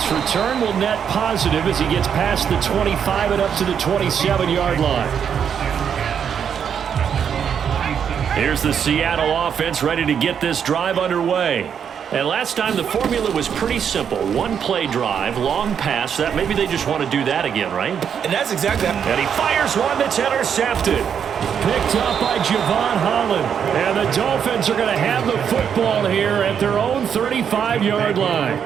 return will net positive as he gets past the 25 and up to the 27-yard line. Here's the Seattle offense ready to get this drive underway. And last time the formula was pretty simple. 1-play drive, long pass. That maybe they just want to do that again, right? And that's exactly that. And he fires one that's intercepted. Picked up by Javon Holland. And the Dolphins are going to have the football here at their own 35-yard line.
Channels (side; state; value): left; quieter; 7.8 dB